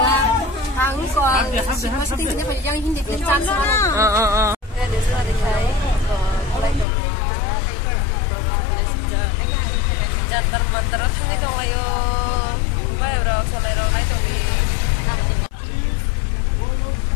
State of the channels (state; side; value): drops out; right; at 6.9 s